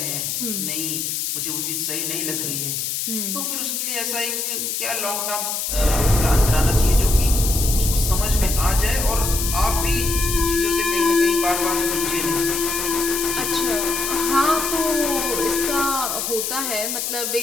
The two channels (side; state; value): left; noise; hiss, 2 dB below the sound